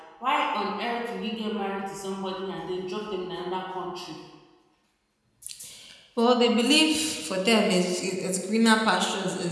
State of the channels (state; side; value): identical; both; correlation 1.00